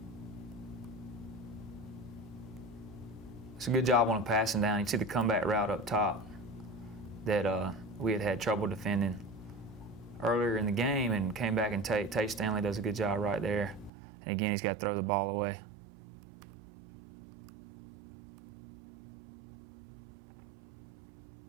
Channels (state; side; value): drops out; left; at 13.9 s